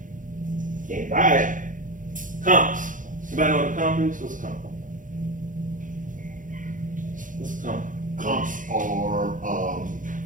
Can't buy it. Comps. Anybody know what a comp is? What's a comp? What's a comp? Comps are,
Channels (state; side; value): late; left; 0.38 ms